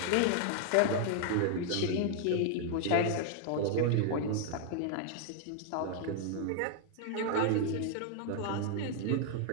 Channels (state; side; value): different; both; correlation 0.00